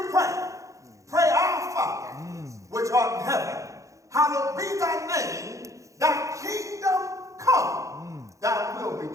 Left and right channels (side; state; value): left; late; 0.15 ms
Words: pray, pray our Father, which art in heaven. Hallowed be thy name. Thy kingdom come. Thy will be